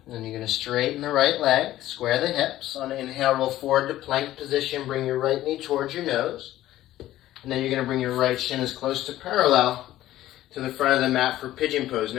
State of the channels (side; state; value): right; quieter; 14.4 dB